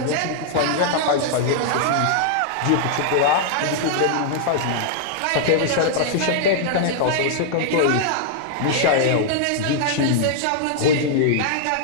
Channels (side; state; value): both; different; correlation -0.01